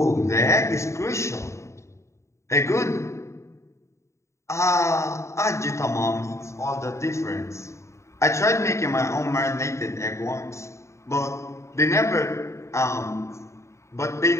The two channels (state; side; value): late; right; 0.14 ms